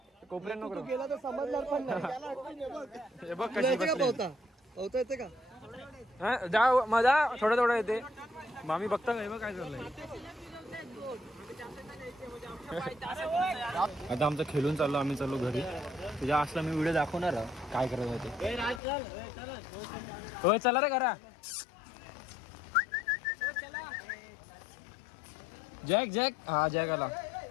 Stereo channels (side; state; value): right; drops out; at 18.8 s